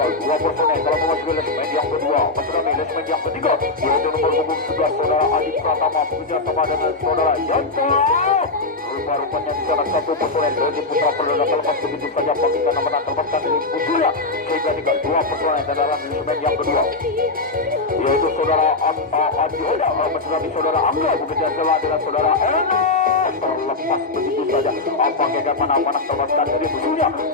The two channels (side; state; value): right; quieter; 3.4 dB